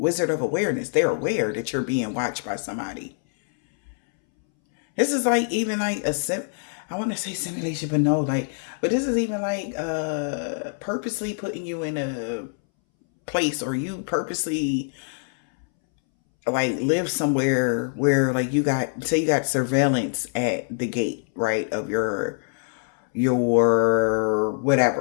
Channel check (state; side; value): silent; right; 62 dB below the other